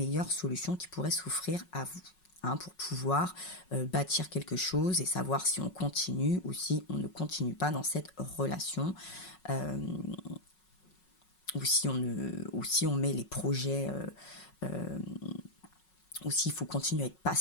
solutions qui pourraient s'offrir à vous. Pour pouvoir bâtir quelque chose et savoir si on continue ou si on ne continue pas dans cette relation, ou si on met les projets, ou s'il faut continuer à être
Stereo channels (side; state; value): right; late; 5.4 ms